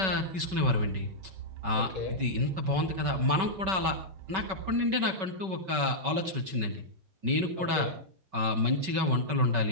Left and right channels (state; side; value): late; left; 5.3 ms